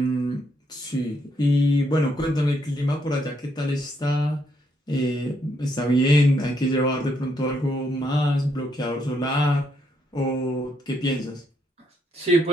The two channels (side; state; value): both; normal; correlation 0.75